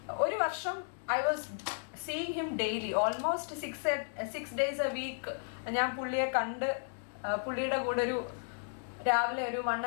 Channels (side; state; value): right; silent; digital silence